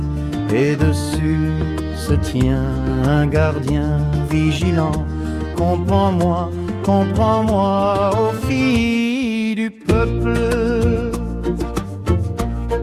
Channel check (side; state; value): both; identical; correlation 1.00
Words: Et dessus se tient un gardien vigilant. Comprends-moi, comprends-moi, ô filles du peuple.